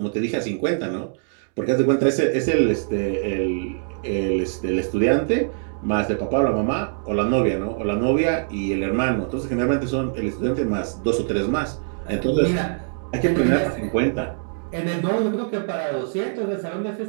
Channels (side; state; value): left; silent; digital silence